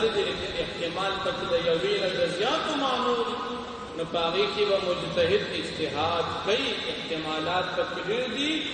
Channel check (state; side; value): identical; both; correlation 1.00